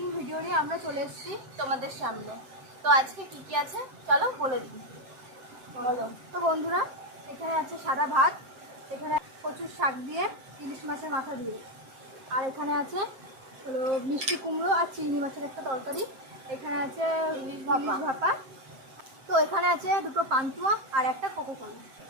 ভিডিও নিয়ে আমরা চলে এসেছি তোমাদের সামনে। তো আজকে কি কি আছে চলো বলে দিই। বলো। তো বন্ধুরা, এখানে আছে সাদা ভাত, এখানে কচুর শাক দিয়ে, ইলিশ মাছের মাথা দিয়ে, আর এখানে আছে হলো মিষ্টি কুমড়ো আর চিংড়ি মাছের একটা তরকারি, এখানে আছে ইলিশ ভাপা, তো এখানে আছে দুটো পান্তুয়া আর একটা কোকোকলা।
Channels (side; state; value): left; late; 7.6 ms